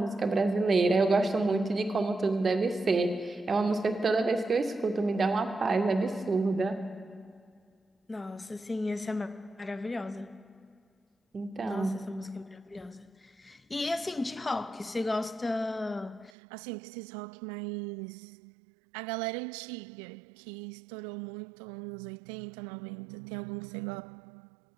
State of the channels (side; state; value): left; drops out; at 16.3 s